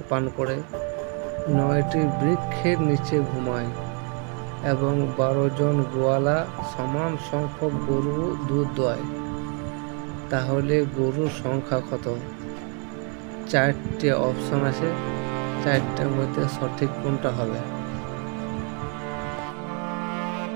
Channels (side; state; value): left; quieter; 38.0 dB